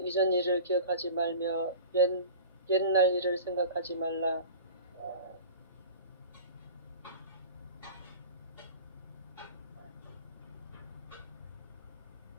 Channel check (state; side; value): inverted; both; correlation -0.38